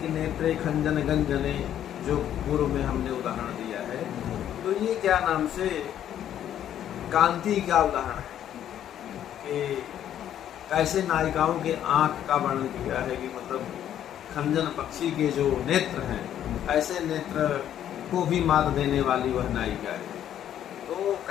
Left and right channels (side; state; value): right; quieter; 10.6 dB